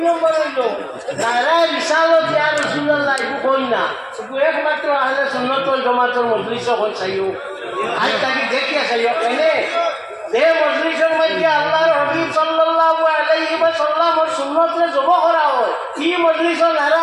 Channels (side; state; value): both; identical; correlation 1.00